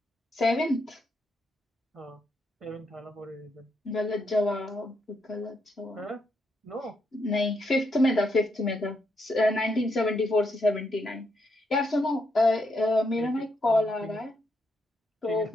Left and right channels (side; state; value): both; normal; correlation 0.79